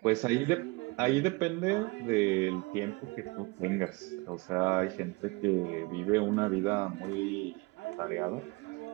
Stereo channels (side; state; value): left; quieter; 25.3 dB